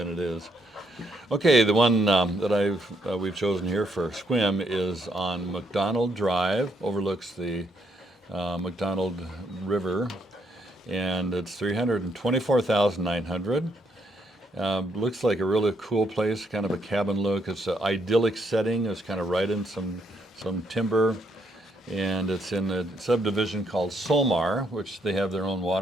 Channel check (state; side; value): normal; both; correlation 0.74